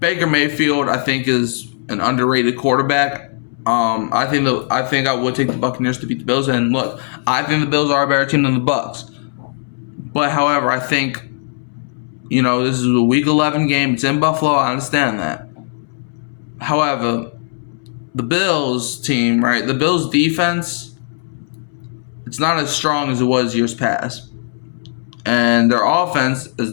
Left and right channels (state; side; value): silent; right; 67 dB below the other